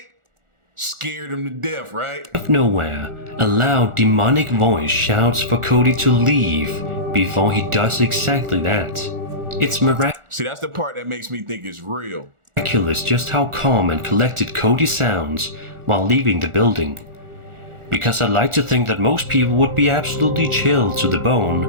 Scared him to death, right? Out of nowhere, a loud demonic voice shouts for Cody to leave before he does exactly that. It's See, that's the part that makes me think it's real. miraculous just how calm and collected Cody sounds while leaving the building. Because I'd like to think that most people would be absolutely chilled to the bone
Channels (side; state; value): left; late; 1.4 ms